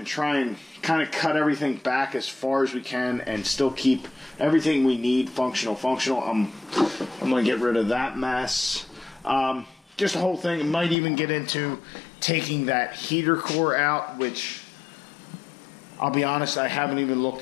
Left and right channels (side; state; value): right; drops out; at 11.0 s